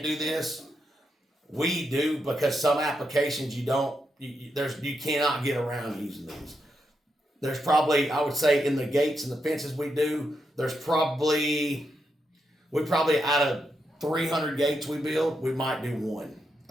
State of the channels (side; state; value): both; normal; correlation 0.83